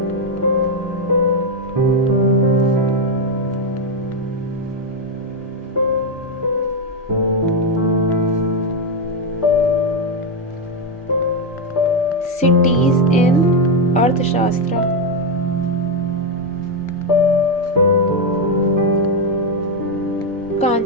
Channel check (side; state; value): both; normal; correlation 0.04